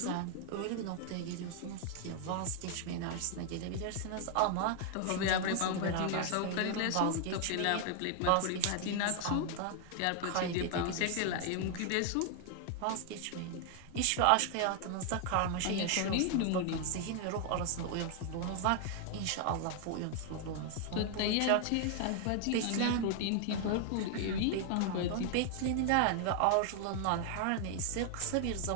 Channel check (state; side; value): different; both; correlation 0.00